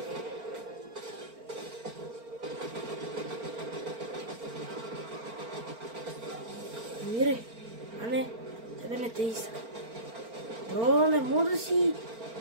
Мирай, а не, тебе не те иска. Бро, не мога да си...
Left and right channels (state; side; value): late; left; 4.4 ms